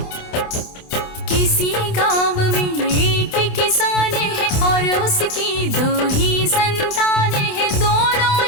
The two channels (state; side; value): late; right; 27 ms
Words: किसी गांव में एक किसान है और उसकी 2 ही संतान है, दोनों